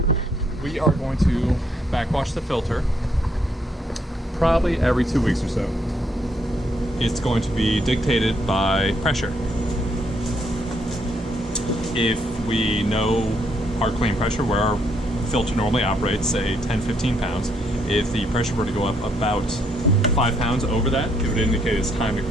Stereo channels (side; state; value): both; normal; correlation 0.73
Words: We are going to backwash the filter probably every 2 weeks or so. It's going to be dictated by pressure. If we know our clean pressure, where our filter normally operates, say 10-15 pounds, if the pressure were to go up about 5 pounds over that, it would indicate it's time to